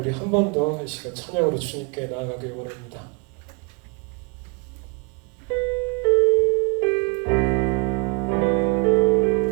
한 번 더 이 시간 찬양으로 주님께 나아가길 원합니다.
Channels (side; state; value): left; quieter; 32.3 dB